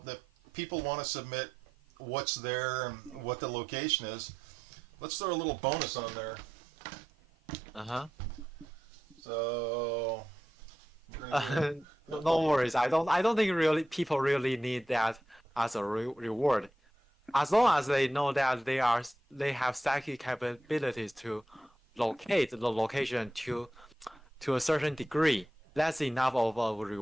people want to submit what's there and what the location is. Let's throw a little bonus on there. Uh-huh. So No worries. I don't think really people really need that as a reward. As long as they know that they have psychic capabilities to locate the location to a certain degree, that's enough of a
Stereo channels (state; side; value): normal; both; correlation 0.87